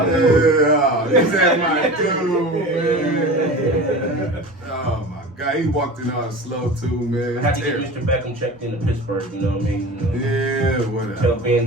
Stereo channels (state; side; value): normal; both; correlation 0.34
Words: dude. Yeah, he said my dude, man. Oh my God, he walked in on slow too, man. I had to get Terrible. Mr. Beckham checked into Pittsburgh, you know what I mean? You know, Yeah, tell whatever. Ben